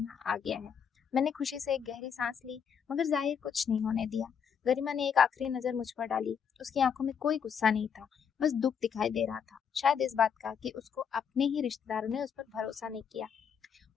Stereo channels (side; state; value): right; quieter; 7.3 dB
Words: आ गया है। मैंने खुशी से एक गहरी सांस ली, मगर जाहिर कुछ नहीं होने दिया। गरिमा ने एक आखिरी नजर मुझ पर डाली। उसकी आंखों में कोई गुस्सा नहीं था, बस दुख दिखाई दे रहा था, शायद इस बात का कि उसको अपने ही रिश्तेदारों ने उस पर भरोसा नहीं किया।